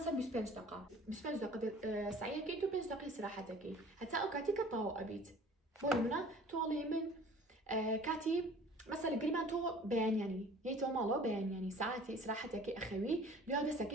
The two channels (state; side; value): normal; both; correlation 0.48